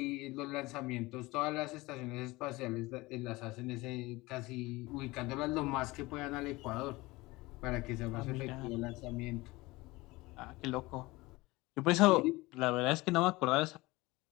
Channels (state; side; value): quieter; right; 21.3 dB